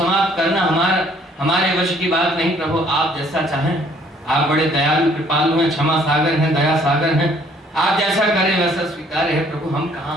करना हमारे वश की बात नहीं प्रभु, आप जैसा चाहें। आप बड़े दयालु कृपालु हैं, क्षमा सागर हैं, दया सागर हैं, आप जैसा करें वैसा स्वीकार है प्रभु। हम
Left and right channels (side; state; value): both; normal; correlation 0.61